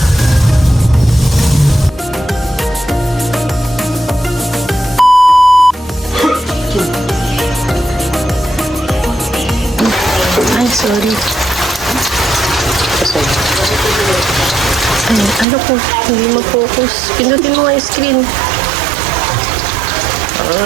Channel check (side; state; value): left; drops out; at 15.5 s